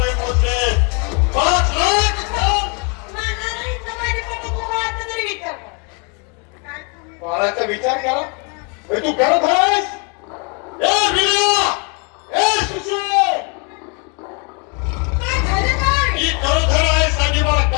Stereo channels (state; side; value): quieter; right; 35.1 dB